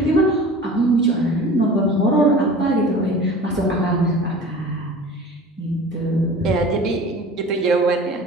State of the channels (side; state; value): both; normal; correlation 0.40